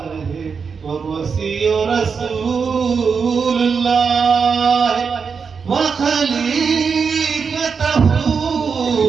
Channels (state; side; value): quieter; left; 5.7 dB